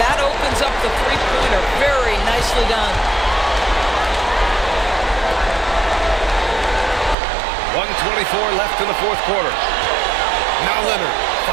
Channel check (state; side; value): drops out; left; at 7.2 s